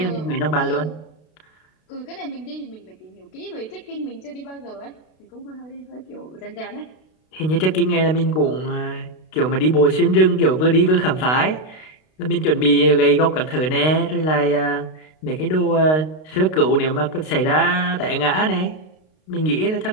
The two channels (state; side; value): late; right; 32 ms